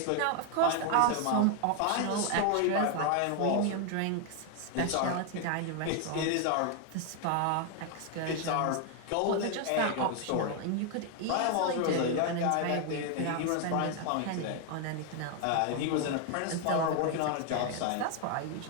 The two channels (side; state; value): both; different; correlation 0.00